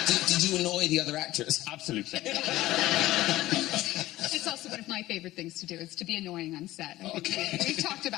Did you annoy the other actors? Absolutely. It's also one of my favorite things to do, is to be annoying on set. Okay. We've talked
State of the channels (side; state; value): right; quieter; 16.4 dB